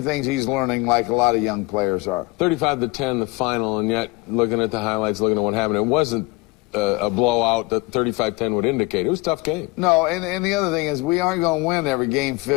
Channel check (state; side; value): quieter; right; 23.2 dB